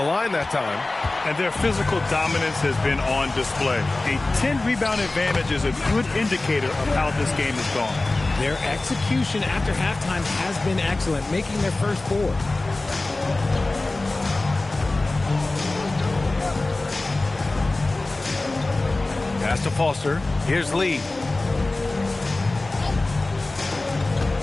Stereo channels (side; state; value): right; quieter; 3.0 dB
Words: line that time. And their physical dominance has been on display. A 10-rebound advantage is a good indicator of how this game has gone. Their execution after halftime has been excellent, making their first 4. Pass to Foster. Here's Lee.